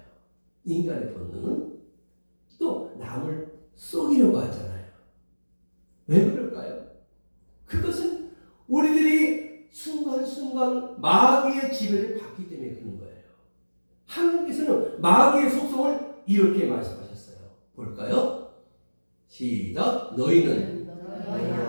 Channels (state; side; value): inverted; both; correlation -1.00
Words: 인간의 본능은 또 남을 속이려고 하잖아요. 왜 그럴까요? 그것은 우리들이 순간순간 마귀의 지배를 받기 때문에 그런 거예요. 하나님께서는 마귀의 속성을 이렇게 말씀하셨어요. 볼까요? 시작. 너희는